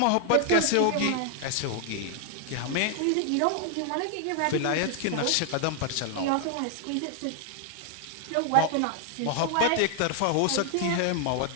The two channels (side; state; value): both; different; correlation 0.00